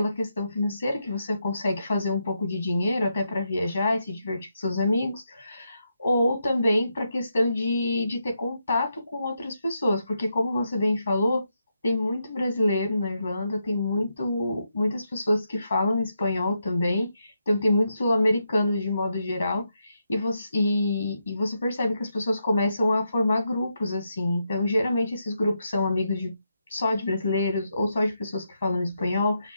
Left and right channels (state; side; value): inverted; both; correlation -0.83